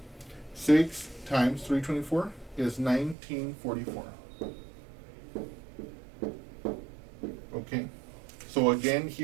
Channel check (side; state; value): left; drops out; at 3.2 s